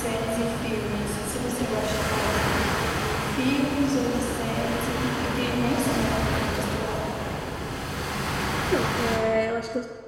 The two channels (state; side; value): identical; both; correlation 1.00